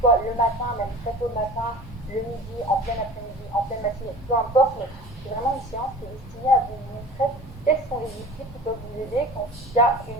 soit le matin, même très tôt le matin, le midi, en plein après-midi, en pleine matinée, peu importe, mais c'est vraiment une séance qui est destinée à vous montrer quels sont les outils qui peuvent vous aider quand il y a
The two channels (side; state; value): both; normal; correlation 0.39